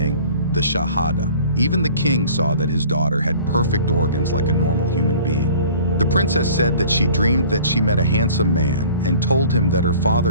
the Shahada. Even the king saw that his daughter had perfect organs like a normal human being. The princess said that she dreamed that she met a handsome man and told him that her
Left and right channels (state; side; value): inverted; both; correlation -0.48